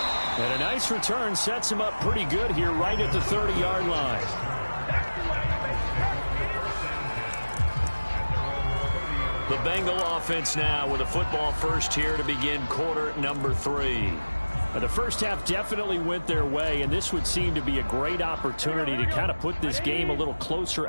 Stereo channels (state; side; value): inverted; both; correlation -1.00